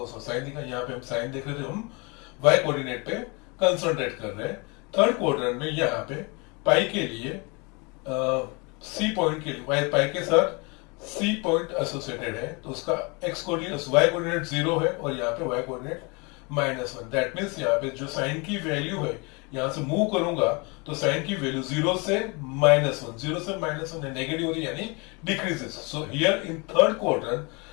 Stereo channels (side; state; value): right; quieter; 29.6 dB